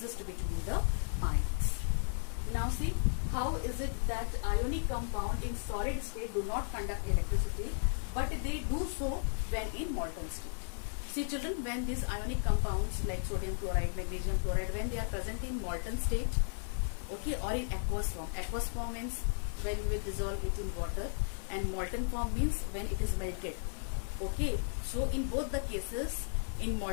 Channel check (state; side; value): silent; right; 54 dB below the other